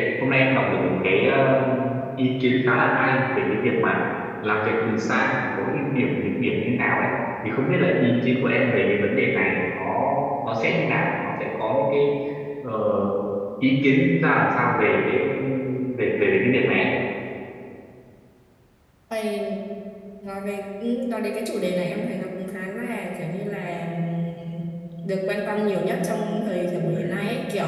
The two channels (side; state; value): both; identical; correlation 1.00